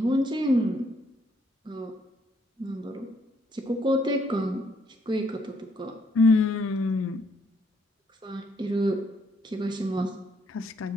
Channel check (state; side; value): normal; both; correlation 0.71